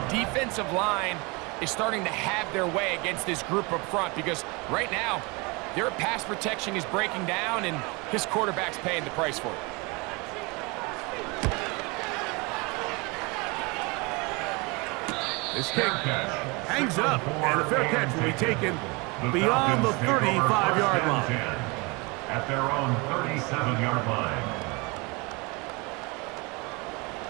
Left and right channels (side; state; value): left; quieter; 27.6 dB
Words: defensive line is starting to have their way against this group up front because right now, their pass protection is breaking down and his quarterback's paying the price for it. This kick hangs up, and a fair catch will be taken beyond the 35-yard line. At their own 37-yard line.